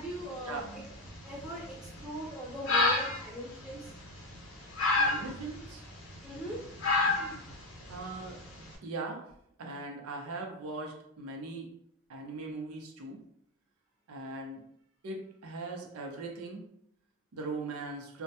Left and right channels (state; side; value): normal; both; correlation 0.10